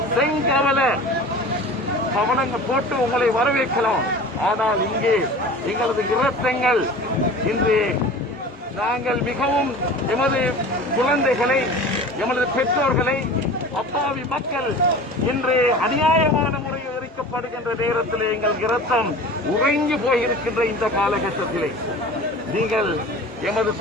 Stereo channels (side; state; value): both; normal; correlation 0.38